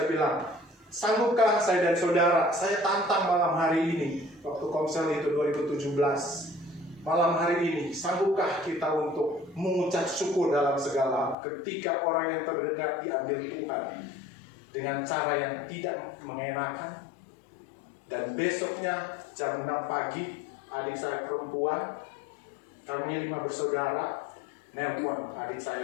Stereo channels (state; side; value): drops out; right; at 11.4 s